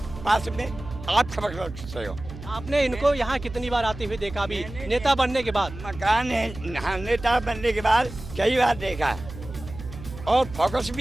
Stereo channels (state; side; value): noise; right; hum, 13 dB below the sound